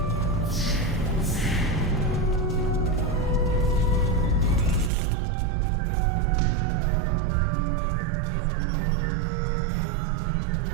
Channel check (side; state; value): left; drops out; at 4.9 s